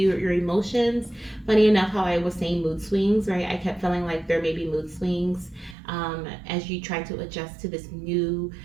emotions, funny enough how I was saying mood swings, right? I kept feeling like there may be mood swings as you try to adjust to this new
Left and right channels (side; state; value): left; drops out; at 5.8 s